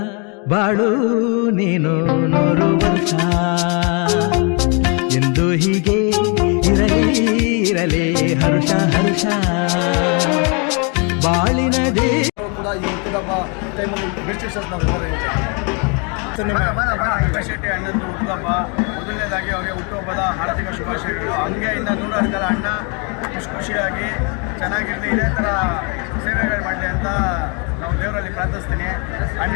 ಬಾಳು ನೀನು 100 ವರ್ಷ ಎಂದು ಹೀಗೆ ಇರಲಿ ಹರುಷ ಹರುಷ ಬಾಳಿನ ದೇ ಕೂಡ ಈ ಹುಟ್ಟುಹಬ್ಬ ಟೈಮಲ್ಲಿ ರಿಸ್ಟ್ರಿಕ್ಷನ್ಸ್ ಶೆಟ್ಟಿ ಅಣ್ಣಂದು ಹುಟ್ಟುಹಬ್ಬ ಮೊದಲನೇದಾಗಿ ಅವರಿಗೆ ಹುಟ್ಟುಹಬ್ಬದ ಆರ್ಥಿಕ ಶುಭಾಶಯಗಳು. ಹಂಗೆ ಇನ್ನು 100 ಕಾಲ ಅಣ್ಣ ಖುಷಿಯಾಗಿ ಚೆನ್ನಾಗಿರಲಿ, ಇದೇ ಥರ ಸೇವೆಗಳು ಮಾಡಲಿ ಅಂತ ನಾವು ದೇವರಲ್ಲಿ ಪ್ರಾರ್ಥಿಸ್ತೀನಿ.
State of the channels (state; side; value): quieter; right; 34.4 dB